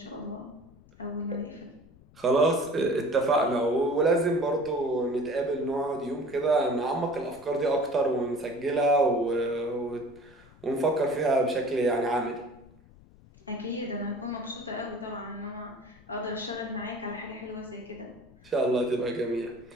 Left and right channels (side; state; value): left; noise; rumble, 25 dB below the sound